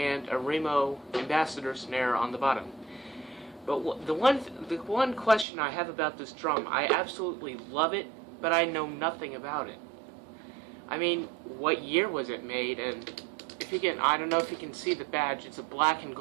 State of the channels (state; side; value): drops out; left; at 5.5 s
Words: a Remo Ambassador snare on the bottom. But the one question I have about this drum, I absolutely love it, but I know nothing about it. I mean, what year was it made? And if you can, I don't know if you can see the badge. It's a black and